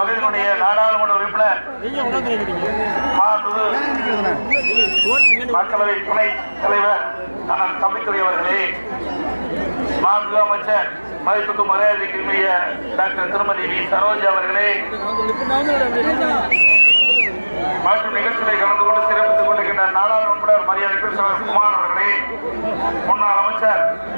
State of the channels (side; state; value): both; inverted; correlation -1.00